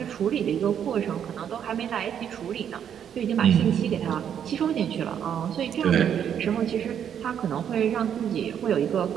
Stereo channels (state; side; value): quieter; left; 8.8 dB